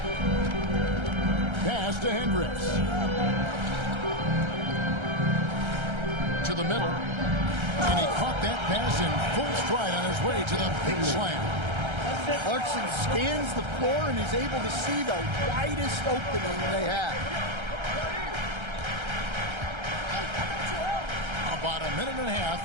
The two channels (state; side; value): late; left; 1.3 ms